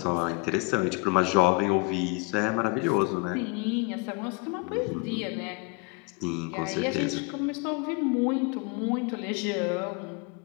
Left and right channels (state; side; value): quieter; right; 28.9 dB